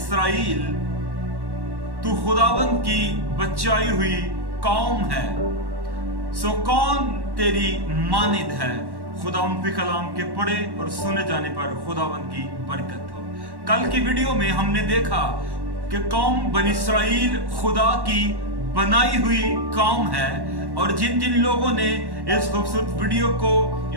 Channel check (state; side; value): late; left; 1.1 ms